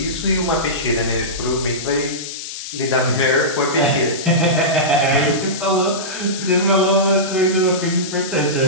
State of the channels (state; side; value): noise; left; hiss, 9 dB below the sound